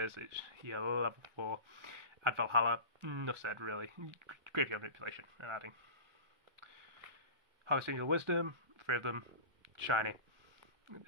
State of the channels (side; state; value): left; late; 1.4 ms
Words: is, it's level 4. Add Valhalla, enough said really. Graveyard Manipulation and adding. Harvest Angel Wisdom, 3 of them, shiny.